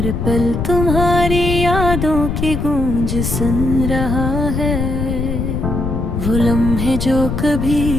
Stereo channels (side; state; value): left; noise; rumble, 2 dB below the sound